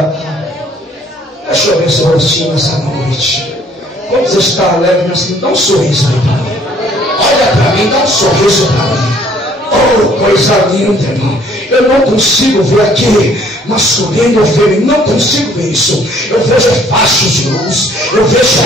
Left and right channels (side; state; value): both; normal; correlation 0.60